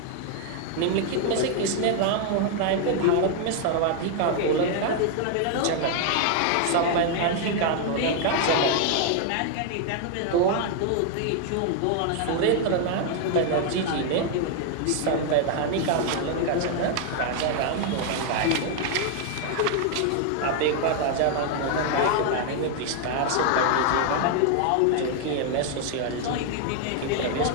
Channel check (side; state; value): both; different; correlation 0.00